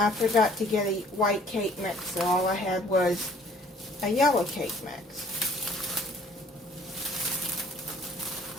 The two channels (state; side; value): normal; both; correlation 0.57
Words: forgot to get a white cake mix, so all I had was a yellow cake mix.